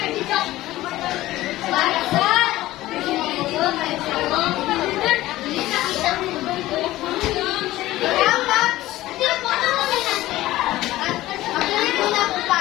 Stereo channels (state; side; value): quieter; right; 16.3 dB